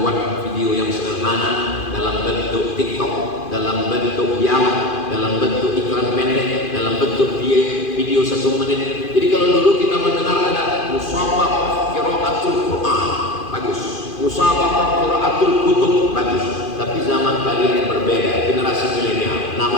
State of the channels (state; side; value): late; right; 2.5 ms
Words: video yang sederhana dalam bentuk TikTok, dalam bentuk dialog, dalam bentuk iklan pendek, dalam bentuk video 1 menit. Jadi kalau dulu kita mendengar ada musabaqah qiraatul Quran, bagus. Musabaqah qiraatul kutub, bagus. Tapi zaman kalian berbeda, generasi milenial.